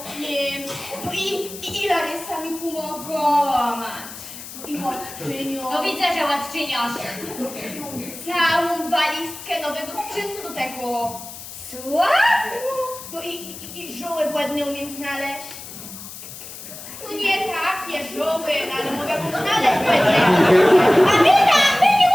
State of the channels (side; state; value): left; noise; hiss, 13 dB below the sound